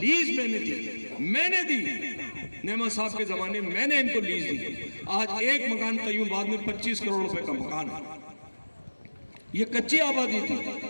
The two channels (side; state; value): both; inverted; correlation -1.00